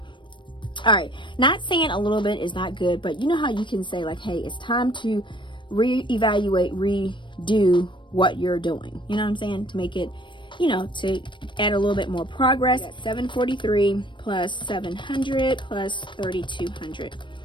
All right, not saying a little bit is not good, but you know how you can say like, hey, it's time to reevaluate, redo what you're doing. You know what I'm saying? To make it, you know, to add a little bit more progress. 743 plus 700 plus 3,200.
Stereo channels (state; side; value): late; right; 0.23 ms